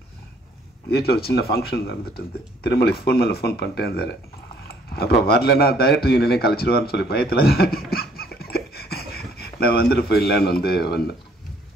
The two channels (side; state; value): both; normal; correlation 0.62